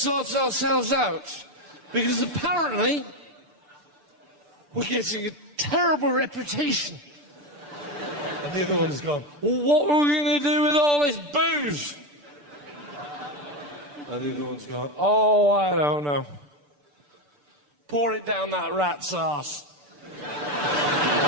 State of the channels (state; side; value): late; left; 6.8 ms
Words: ourselves out because apparently we're getting a terrible reputation. And the other one's gone, well, what are we going to do with all this booze? And the other one's gone, oh, I don't know. Pour it down that rat's arse.